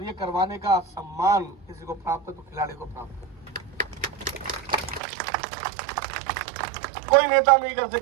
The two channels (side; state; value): left; drops out; at 5.0 s